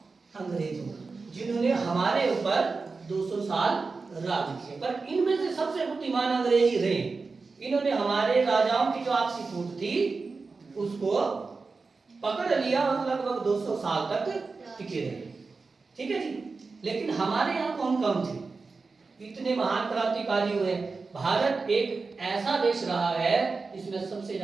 अंग्रेजों का, जिन्होंने हमारे ऊपर 200 साल राज किया। पर इनमें से सबसे बुद्धिमान अंग्रेज ही रहे। इन्होंने हमारे राजाओं की जो आपसी फूट थी उसको पकड़ लिया और लगभग 200 साल तक टिके रहे। ठीक है जी। लेकिन हमारे यहाँ कौन कौन थे? इतने महान क्रांतिकारी हुए। भारत एक ऐसा देश रहा है जिसमें सबसे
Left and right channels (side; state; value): left; quieter; 4.2 dB